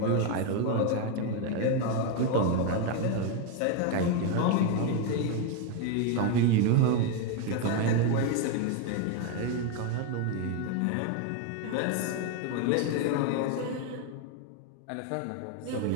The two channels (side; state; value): both; different; correlation 0.01